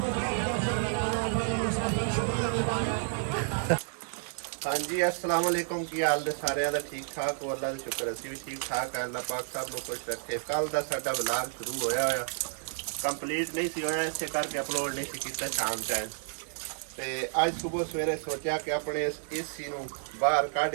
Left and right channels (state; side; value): silent; left; 57 dB below the other